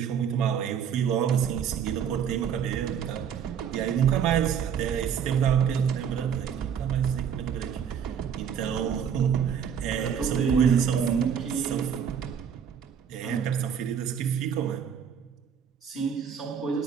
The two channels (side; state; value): left; quieter; 7.8 dB